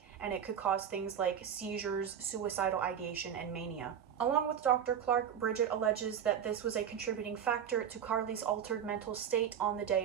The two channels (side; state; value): left; quieter; 8.7 dB